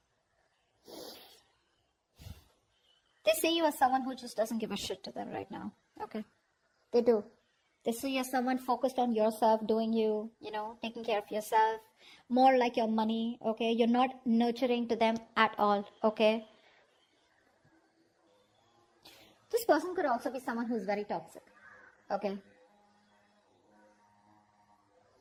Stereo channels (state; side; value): identical; both; correlation 1.00